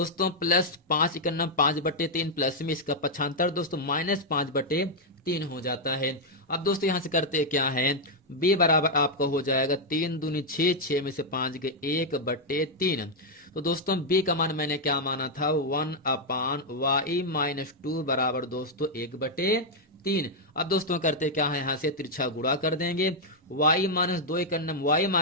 प्लस 5 का नम 5/3 प्लस में इसका पक्षांतर दोस्तों -5/3 हो जाता है। अब दोस्तों यहां से करते क्या है, b बराबर आपका हो जाएगा 3 दूनी 6 6 में से 5 गए 1/3। तो दोस्तों b का मान मैंने क्या माना था, 1/y माइनस 2 बराबर दोस्तों 1/3। अब दोस्तों करते क्या है, यहाँ से तिरछा गुणा कर देंगे, y माइनस 2 का नम y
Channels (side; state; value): both; normal; correlation -0.02